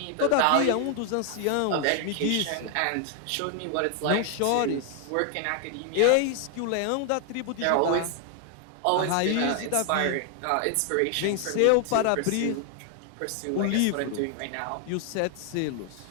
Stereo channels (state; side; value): different; both; correlation 0.00